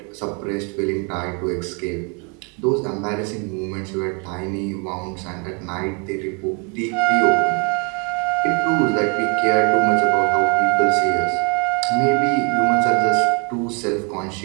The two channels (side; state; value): left; quieter; 34.8 dB